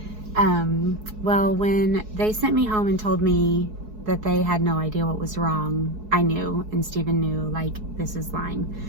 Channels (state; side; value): late; left; 4.7 ms